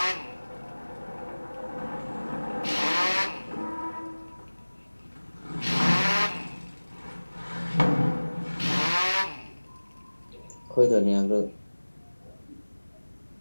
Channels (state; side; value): inverted; both; correlation -1.00